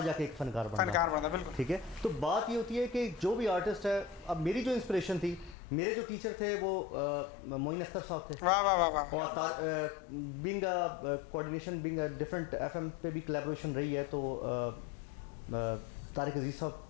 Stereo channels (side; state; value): right; drops out; at 5.6 s